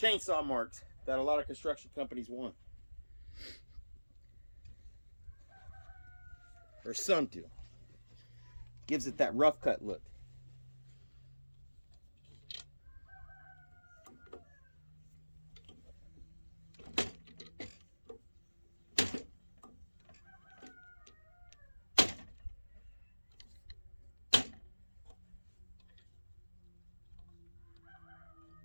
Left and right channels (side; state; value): both; inverted; correlation -1.00